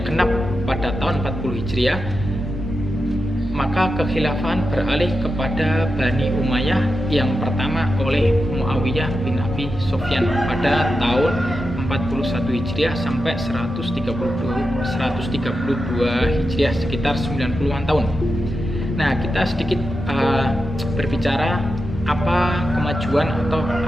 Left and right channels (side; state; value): left; noise; hum, 15 dB below the sound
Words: genap pada tahun 40 Hijriah, maka kekhilafahan beralih kepada Bani Umayyah yang pertama oleh Muawiyah bin Abi Sufyan pada tahun 41 Hijriah sampai 132 Hijriah, sekitar 90-an tahun. Nah, kita sedikit berbicara apa kemajuan atau